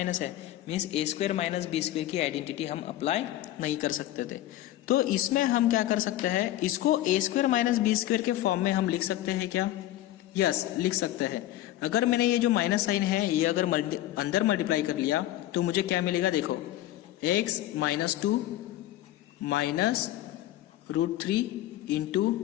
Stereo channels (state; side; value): quieter; right; 14.3 dB